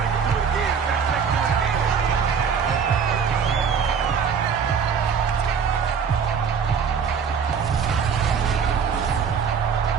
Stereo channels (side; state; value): left; quieter; 6.5 dB